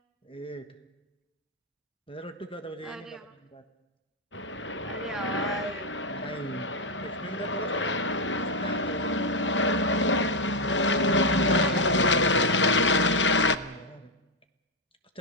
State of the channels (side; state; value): both; normal; correlation 0.02